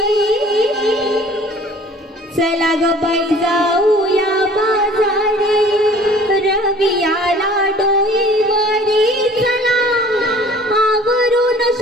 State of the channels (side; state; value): both; normal; correlation 0.50